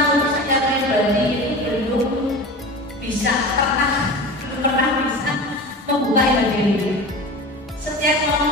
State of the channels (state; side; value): normal; both; correlation 0.32